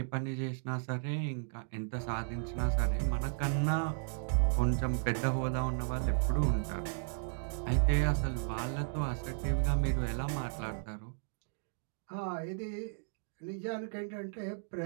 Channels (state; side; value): silent; left; digital silence